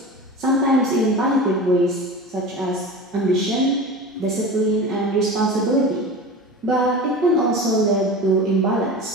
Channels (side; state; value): both; normal; correlation 0.31